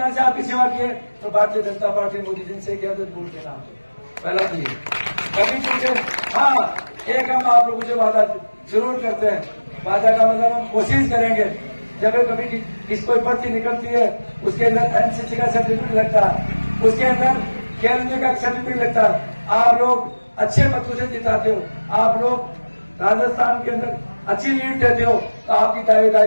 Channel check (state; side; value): inverted; both; correlation -1.00